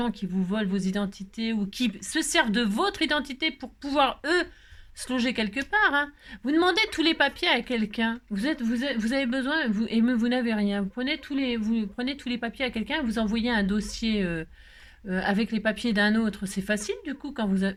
qui vous volent vos identités ou qui se servent de votre identité pour pouvoir, eux, se loger quelque part, hein. Vous demandez tous les papiers à quelqu'un, vous avez besoin, vous n'avez rien, vous prenez tous les papiers à quelqu'un, vous envoyez un dossier avec les papiers d'un autre, c'est facile du coup quand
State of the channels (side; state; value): both; identical; correlation 1.00